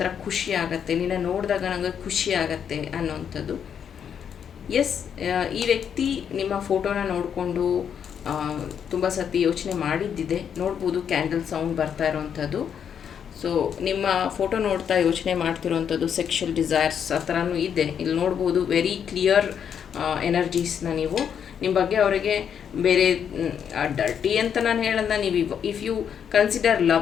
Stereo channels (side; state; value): right; quieter; 8.0 dB